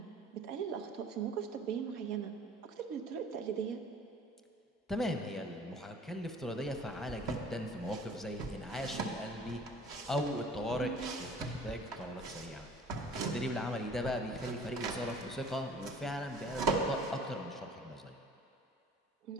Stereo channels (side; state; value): both; normal; correlation 0.49